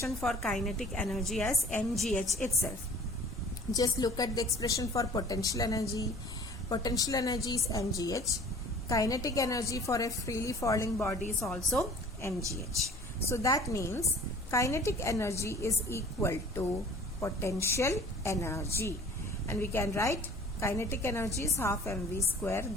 for kinetic energy as mgh itself. Just look at the expression for potential energy. Potential energy is mgh. Kinetic energy for a freely falling body is also mgh. So that means kinetic energy is equal to potential energy, and we can write kinetic energy is half mv square,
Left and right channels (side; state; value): left; noise; hum, 18 dB below the sound